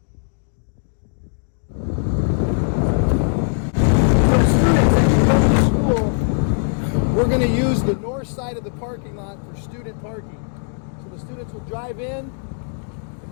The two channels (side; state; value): right; silent; digital silence